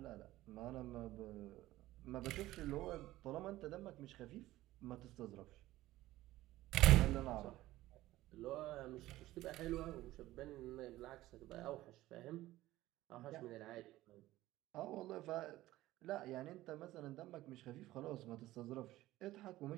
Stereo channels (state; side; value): quieter; left; 16.3 dB